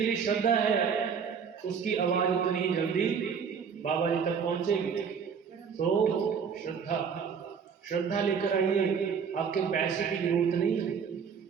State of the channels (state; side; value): quieter; left; 6.6 dB